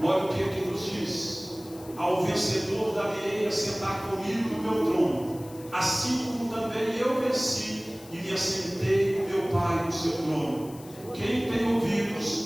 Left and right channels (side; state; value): left; noise; hiss, 20 dB below the sound